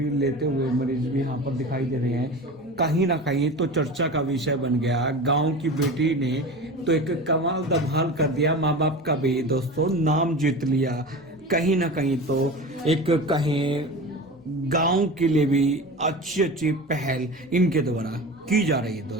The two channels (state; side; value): normal; both; correlation 0.32